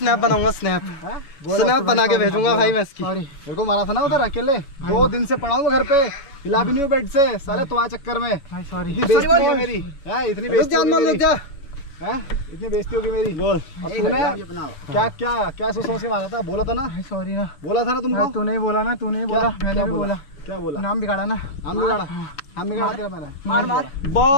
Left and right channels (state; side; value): late; right; 7.1 ms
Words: बनाऊंगा, स्नैप बना के भेजूंगा भाई मैं इसकी। मेरे को मारा था ना उधर अकेले, 2 दिन से पड़ा हूँ घर पे, हिला भी नहीं हूँ बेड से साले तुम्हारे चक्कर में। इतनी बेइज्जती है मेरी, इतनी बेइज्जती होगी मेरी, इतनी बेइज्जती होगी मेरी। बोल क्या क्या क्या सोच समझ के मारा था? बोला था ना सॉरी ना, बोला था ना तुमको। तू नहीं बोला ना, तू नहीं बोला, मैंने भी बोला। क्या बोला? नाम बिगाड़ा ना, नाम बिगाड़ा, नाम बिगाड़ा तेरा मैंने। मार मार